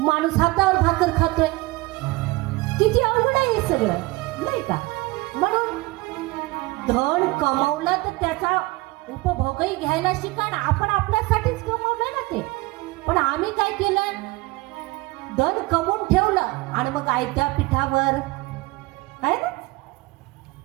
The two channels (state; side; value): quieter; left; 21.8 dB